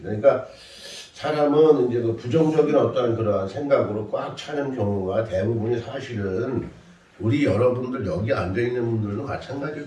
그러니까 사람은 이제 그 부정적인 어떤 그러한 생각으로 꽉 차는 경우가 대부분이 사실은 우리 여러분들 여기 앉아 있는 분들도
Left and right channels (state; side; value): identical; both; correlation 1.00